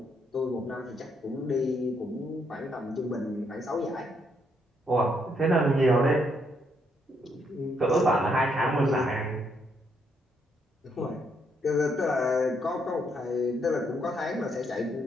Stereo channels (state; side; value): normal; both; correlation 0.74